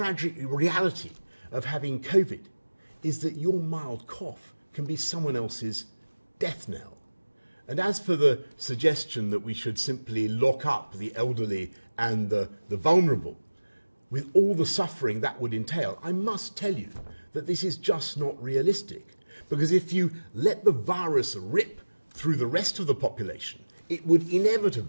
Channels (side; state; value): both; inverted; correlation -1.00